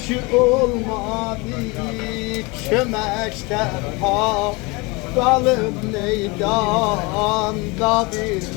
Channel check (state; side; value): quieter; right; 26.4 dB